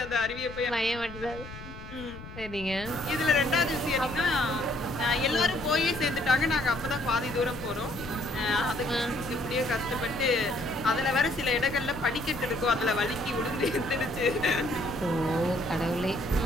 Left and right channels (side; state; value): left; noise; rumble, 14 dB below the sound